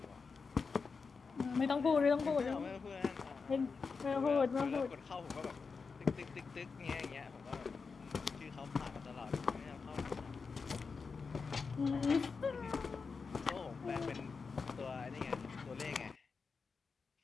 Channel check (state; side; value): quieter; right; 5.0 dB